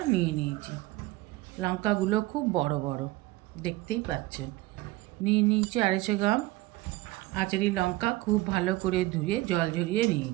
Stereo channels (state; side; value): quieter; left; 19.0 dB